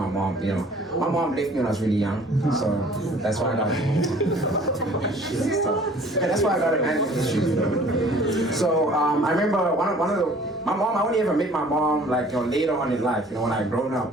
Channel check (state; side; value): normal; both; correlation 0.52